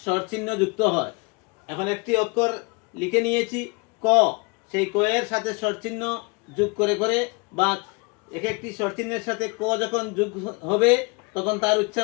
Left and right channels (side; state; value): right; quieter; 29.5 dB